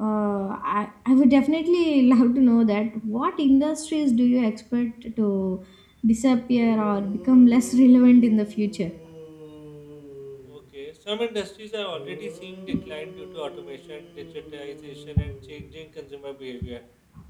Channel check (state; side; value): identical; both; correlation 1.00